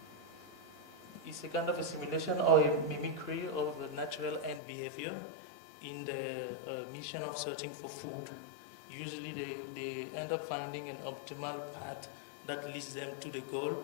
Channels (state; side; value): drops out; right; at 4.6 s